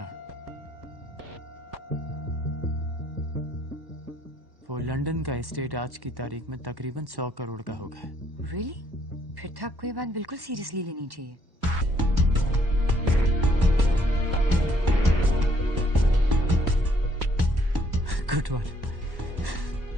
वो लंदन का एस्टेट आज की तारीख में तकरीबन 100 करोड़ का होगा. Really? फिर तो आपको ये बात बिल्कुल सीरियसली लेनी चाहिए. Good one.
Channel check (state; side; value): late; left; 1.1 ms